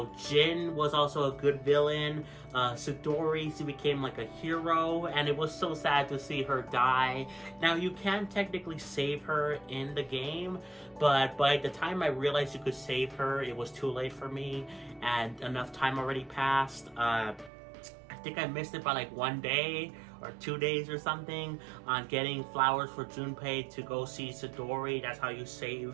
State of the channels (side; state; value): left; drops out; at 17.5 s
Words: Jin was also a good villain. Sidori, she became like a hero, and it was so sad to see her die. Now, you can technically save her in the game, but by the time I realized you could save her, it was too late for me, and enough time already passed. I think I missed it by like 1 day or 2 days or something on getting flowers for Junpei to go see Sidori. That's how you